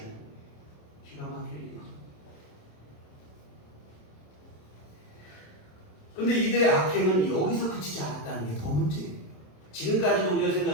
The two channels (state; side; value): late; right; 27 ms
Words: 거예요. 기가 막힐 일이죠. 그런데 이들의 악행은 여기서 그치지 않았다는 게 더 문제예요. 지금까지도 우리가